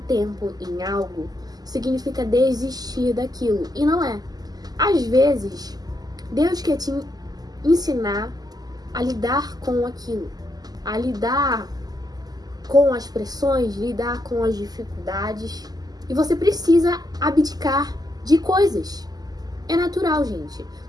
em algo significa desistir daquilo. E não é. Às vezes, Deus quer te ensinar a lidar com aquilo, a lidar com as pressões, lidar com as dificuldades. E você precisa abdicar de coisas. É natural, gente.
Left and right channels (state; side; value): late; left; 0.19 ms